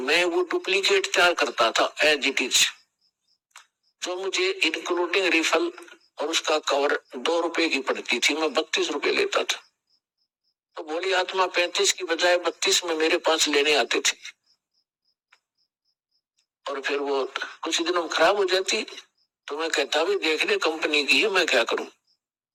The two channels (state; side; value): identical; both; correlation 1.00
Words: वो डुप्लीकेट तैयार करता था एज इट इज, जो मुझे इंक्लूडिंग रिफल और उसका कवर 2 रुपए की पड़ती थी, मैं 32 रुपए लेता था। तो भोली आत्मा 35 की बजाय 32 में मेरे पास लेने आते थे, और फिर वो कुछ दिनों में खराब हो जाती, तो मैं कहता भी देख ले कंपनी की है, मैं क्या करूं,